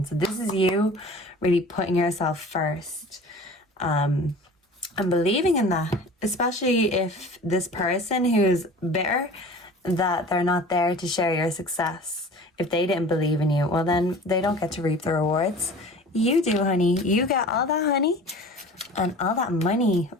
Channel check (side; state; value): both; normal; correlation 0.42